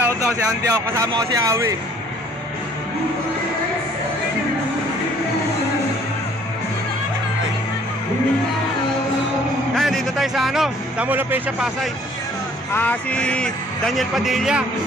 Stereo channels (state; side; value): normal; both; correlation 0.58